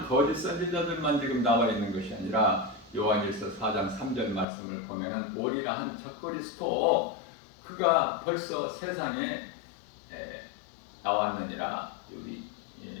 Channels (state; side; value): drops out; right; at 4.5 s